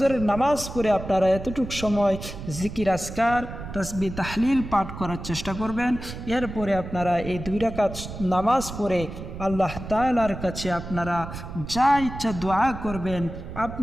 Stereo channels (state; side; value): noise; right; rumble, 10 dB below the sound